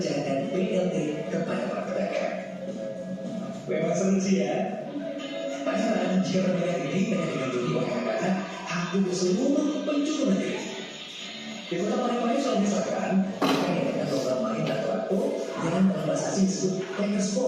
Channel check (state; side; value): identical; both; correlation 1.00